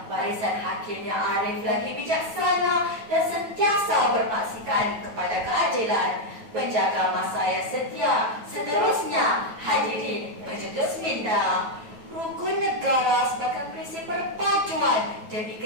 Barisan hakim yang arif lagi bijaksana dan sentiasa bermaksikan kepada keadilan. Penjaga masa yang setia, seterusnya hadirin berjutus minda. Rukun negara sebagai prinsip perpaduan demi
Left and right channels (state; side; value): late; left; 9.2 ms